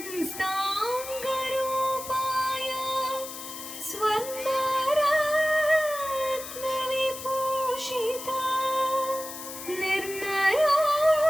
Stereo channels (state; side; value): noise; left; hiss, 10 dB below the sound